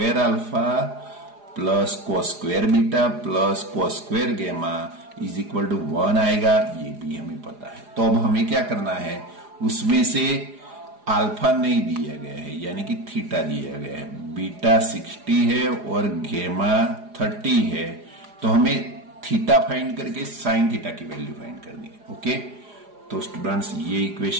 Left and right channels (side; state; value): left; late; 4.8 ms